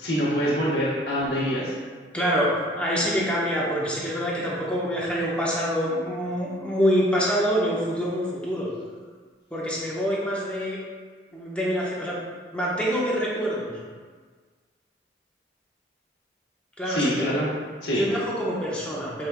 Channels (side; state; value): both; normal; correlation 0.54